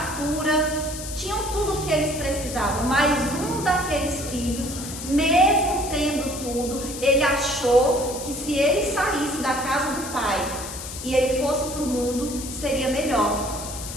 tinham tudo o que eles precisavam. Mas um daqueles filhos, mesmo tendo tudo, ele achou que se ele saísse da casa do pai e ele fosse para o mundo, seria melhor.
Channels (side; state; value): left; noise; hiss, 9 dB below the sound